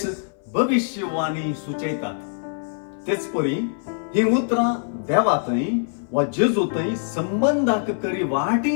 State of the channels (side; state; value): right; silent; 58 dB below the other